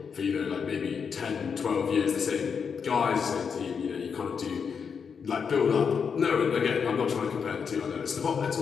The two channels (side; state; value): right; quieter; 6.3 dB